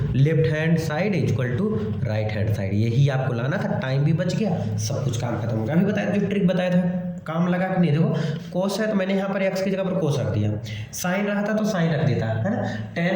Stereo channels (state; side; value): identical; both; correlation 1.00